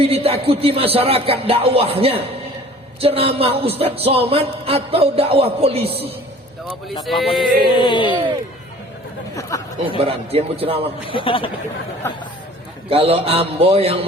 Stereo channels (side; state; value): both; normal; correlation 0.48